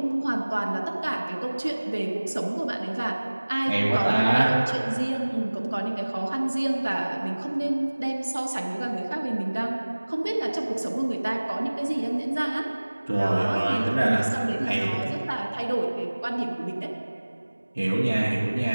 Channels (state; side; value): inverted; both; correlation -1.00